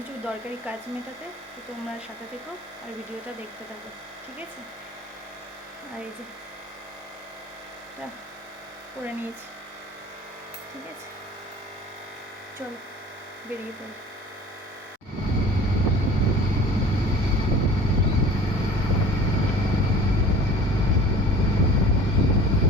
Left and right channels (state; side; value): normal; both; correlation 0.44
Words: দরকারি কাজ মেটাতে। তো তোমরা সাথে থেকো আর ভিডিওটা দেখতে থাকো, ঠিক আছে? আর এই যে করে নিয়েছি, ঠিক আছে, চল বেরিয়ে পড়ি।